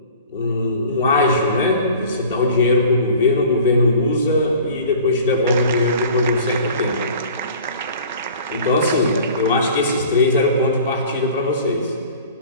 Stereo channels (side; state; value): both; inverted; correlation -0.45